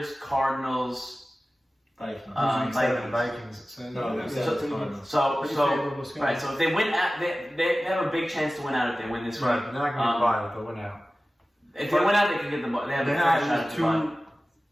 Cardinals, Vikings. Vikings. Vikings. So, No, yeah. except the Cardinals. So Pretty favorable schedule. right. So if they win, they have a big chance to win out if they win this Right, week. they're not going to buy it. They'll win out. If they win out, they can get the ball. They have a They're fair shot not at the ball.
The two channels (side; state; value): both; normal; correlation 0.96